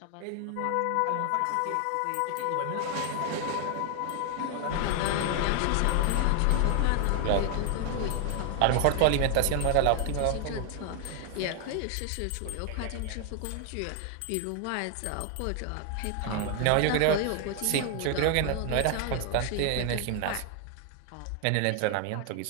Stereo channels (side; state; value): both; different; correlation 0.00